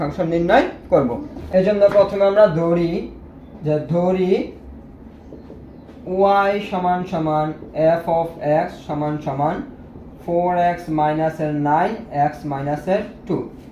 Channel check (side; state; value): both; identical; correlation 1.00